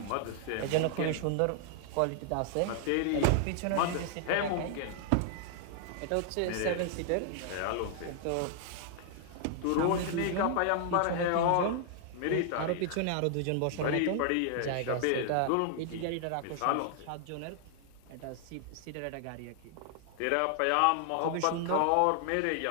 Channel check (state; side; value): different; both; correlation 0.00